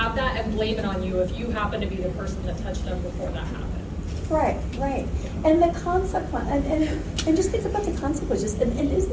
that and blame it on you if you happen to be the person that touched them before that happened. Right. And the consequence, and just think about the consequences, and isn't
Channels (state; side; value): identical; both; correlation 1.00